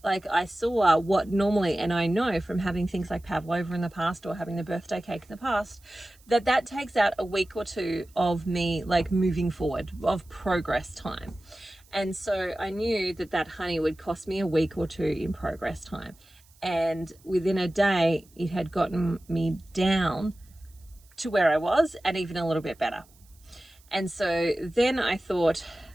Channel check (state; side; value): noise; right; hiss, 29 dB below the sound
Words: Like, I saw what normally, and I know from having things like pavlova in the past, or having the birthday cake in the past, that takes out a week or two of me like moving forward, of progress time. And so I knew that honey would cost me a week or two in progress time. And within a day, it had gotten me down to where I was, and even a little bit better. And so then I thought,